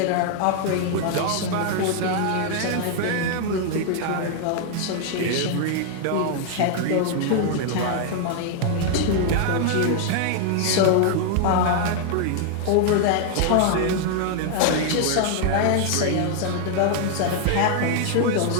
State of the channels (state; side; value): different; both; correlation 0.00